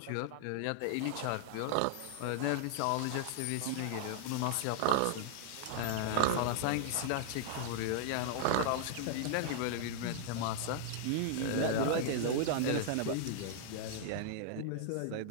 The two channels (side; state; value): both; different; correlation -0.01